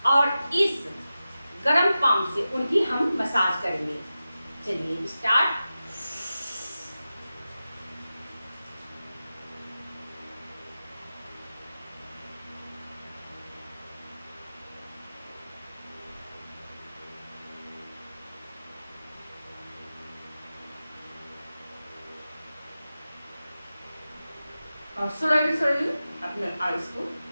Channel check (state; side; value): inverted; both; correlation -0.94